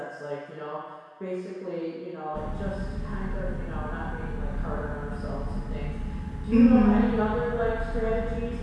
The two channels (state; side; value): identical; both; correlation 1.00